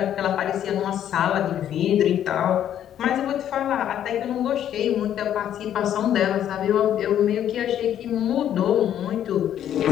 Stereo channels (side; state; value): right; quieter; 10.5 dB